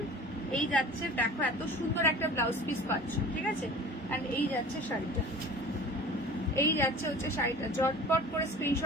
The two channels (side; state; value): both; normal; correlation 0.40